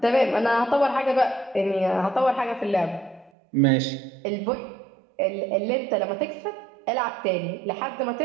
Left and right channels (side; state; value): left; drops out; at 3.3 s